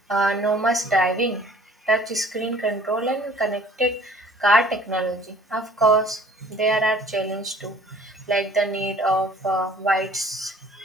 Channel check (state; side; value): normal; both; correlation 0.53